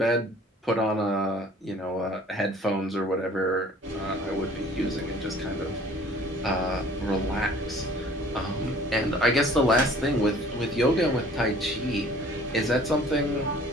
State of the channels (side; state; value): both; normal; correlation 0.52